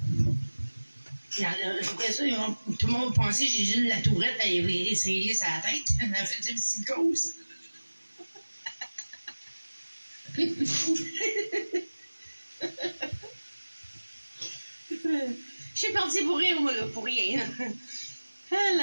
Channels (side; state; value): both; inverted; correlation -1.00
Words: Après ça, tout le monde pensait que j'ai juste la tourette à essayer sur la tête. Elle a fait une psychose. Je suis partie pour rire, moi, là, pour rien.